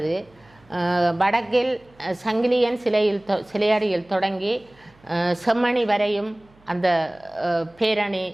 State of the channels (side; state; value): right; noise; hum, 30 dB below the sound